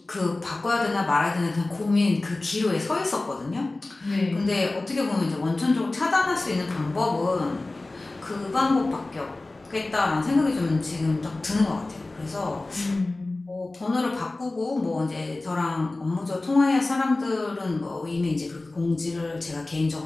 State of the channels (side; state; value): right; quieter; 3.0 dB